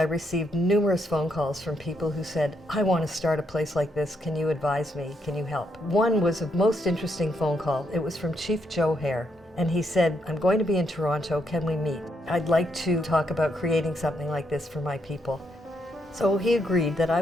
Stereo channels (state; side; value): normal; both; correlation 0.77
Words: received numerous phone calls from people who said, I want to start a place like this. Can you advise me? Can you help? One was a most interesting phone call. It was from Chief Joe Hare. And he said, I'm going to be in Toronto. Can we meet? I'd like to talk about creating something like this for my people. So he agreed that I